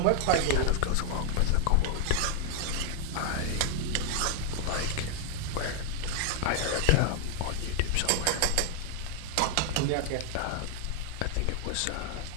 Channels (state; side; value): different; both; correlation 0.00